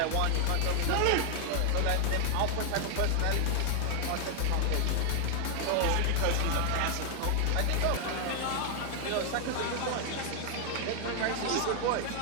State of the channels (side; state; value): both; different; correlation 0.00